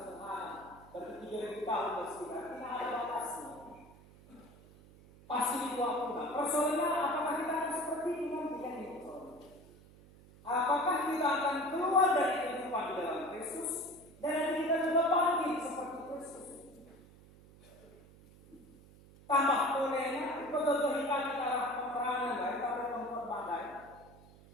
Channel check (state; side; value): noise; right; hum, 23 dB below the sound